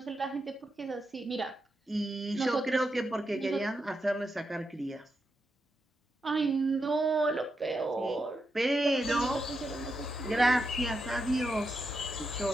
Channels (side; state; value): both; normal; correlation 0.85